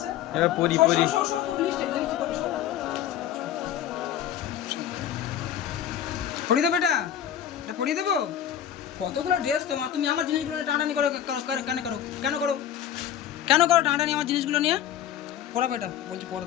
এবার পরি পড়িয়ে দেবো এটা পড়িয়ে দেবো কতগুলো ড্রেস তোমার তুমি আমার জিনিসগুলো নিয়ে টানাটানি করে কেন করো টানাটানি আমার জিনিসগুলো নিয়ে পড়াবে এটা বলছি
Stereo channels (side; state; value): right; quieter; 10.3 dB